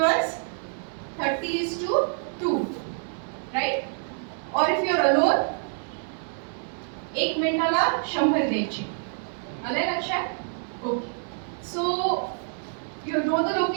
30:2. Right? Or if you are alone, 1 मिनिटाला 100 द्यायचे. आलंय लक्षात? Okay. So you know the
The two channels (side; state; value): left; silent; digital silence